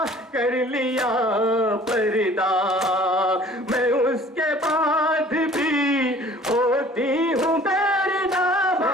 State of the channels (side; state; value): both; normal; correlation 0.51